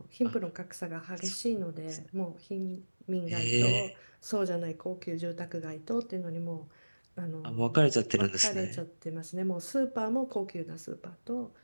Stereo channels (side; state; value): both; inverted; correlation -1.00